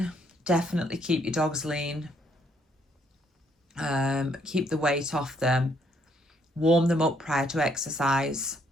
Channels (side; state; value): both; normal; correlation 0.69